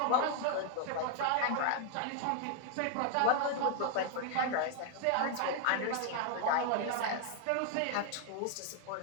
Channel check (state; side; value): different; both; correlation 0.00